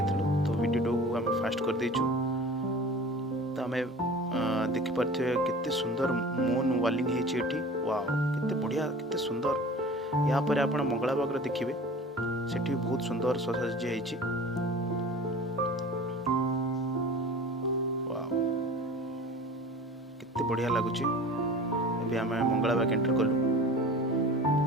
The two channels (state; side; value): normal; both; correlation 0.40